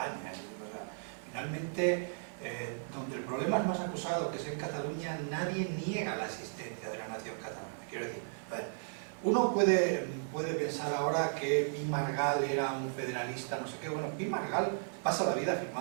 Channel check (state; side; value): silent; left; 54 dB below the other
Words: O sea, finalmente, donde el problema es más acusado, que es en Cataluña, nadie niega la existencia de la nación catalana. Quiero decir, a ver, uno puede pensar ahora que Pi Margall era un federalista, no sé qué. Bueno, Pi Margall pasa la vida